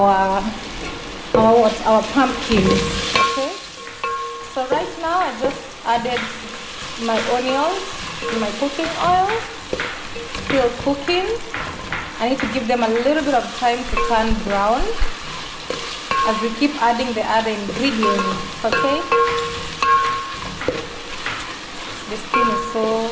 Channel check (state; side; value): identical; both; correlation 1.00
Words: pumpkins. Okay, so right now I just added my onions to my cooking oil. Still cooking. I need to give them a little bit of time to turn brown as we keep adding the other ingredients. Okay, the skin is so